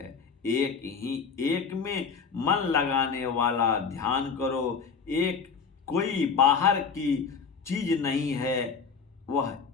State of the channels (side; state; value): right; quieter; 5.7 dB